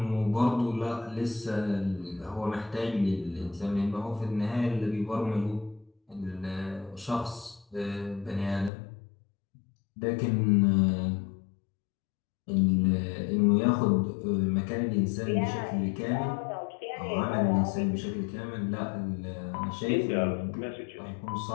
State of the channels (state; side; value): drops out; right; at 8.7 s